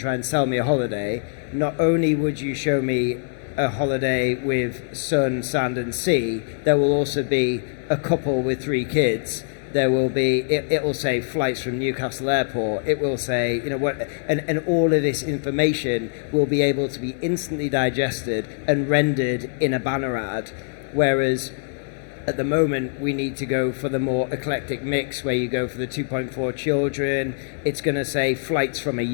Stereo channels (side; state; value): right; silent; 63 dB below the other